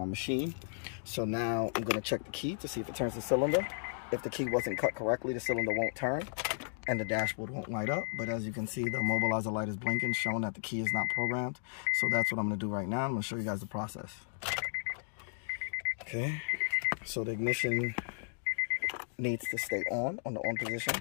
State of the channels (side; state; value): right; silent; digital silence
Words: machine. So now I'm gonna check the key to see if it turns the cylinder. If the key wasn't cut correctly, the cylinder won't turn and the dashboard won't light up. But as you can see, the immobilizer light is blinking, showing that the key is not programmed. So that's what I'm gonna do right now. I'm gonna show you guys the process. Okay, so the ignition needs to stay on the on position,